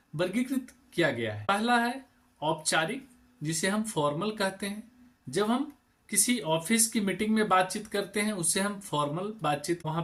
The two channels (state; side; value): identical; both; correlation 1.00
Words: वर्गीकृत किया गया है। पहला है औपचारिक, जिसे हम फॉर्मल कहते हैं। जब हम किसी ऑफिस की मीटिंग में बातचीत करते हैं उससे हम फॉर्मल बातचीत वहां